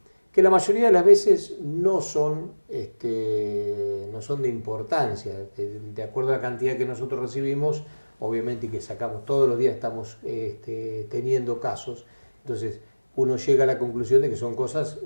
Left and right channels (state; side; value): inverted; both; correlation -1.00